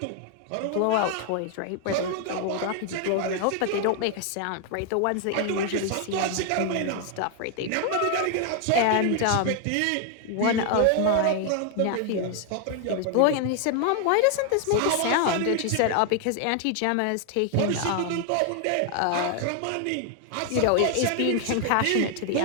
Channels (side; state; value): both; different; correlation 0.00